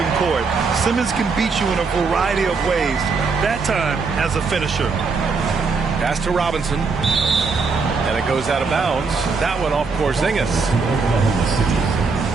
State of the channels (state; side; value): quieter; left; 4.6 dB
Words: court. Simmons can beat you in a variety of ways, that time as a finisher. Pass to Robinson. And it goes out of bounds. That one off Porzingis.